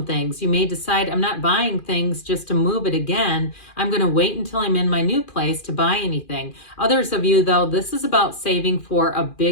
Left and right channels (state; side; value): late; right; 2.4 ms